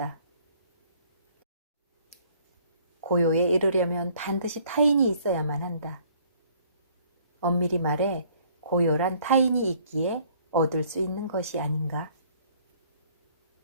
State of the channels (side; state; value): both; inverted; correlation -0.59